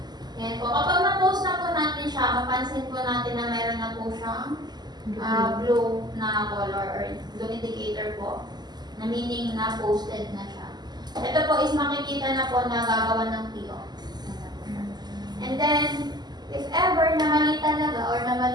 Yan po. Kapag na-post na po natin siya, mapansin po natin na meron na po siyang blue na color or blue indicator po na meaning na posted na siya. Ito po is makikita na po na gagawa ng PO. And then, if ever na mali talaga or na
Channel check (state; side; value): late; left; 0.20 ms